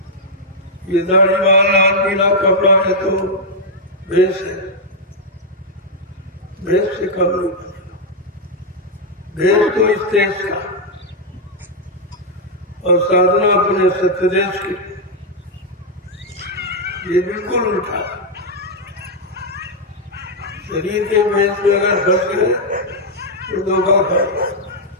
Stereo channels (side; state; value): both; normal; correlation -0.02